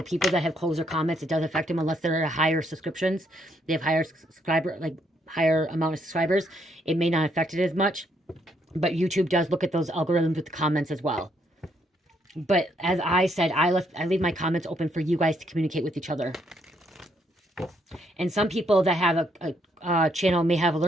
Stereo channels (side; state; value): both; normal; correlation 0.73